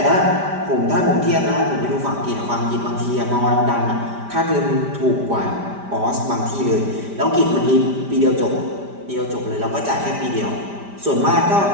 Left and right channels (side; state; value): left; late; 5.0 ms